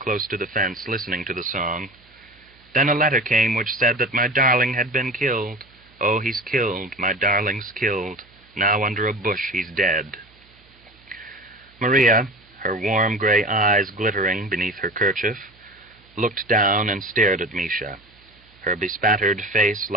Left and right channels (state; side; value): noise; right; hum, 29 dB below the sound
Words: to the fence, listening to the song. Then a letter came which said that my darling had been killed. "Oh, he's killed, my darling's killed. Now under a bush he's dead." Maria, her warm gray eyes glittering beneath her kerchief, looked down and stared at Misha. Her bespattered face